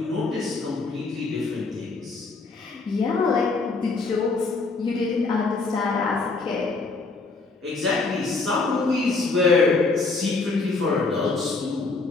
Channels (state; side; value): quieter; right; 3.9 dB